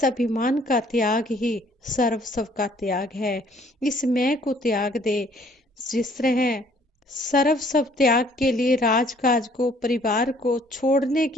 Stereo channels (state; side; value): normal; both; correlation 0.60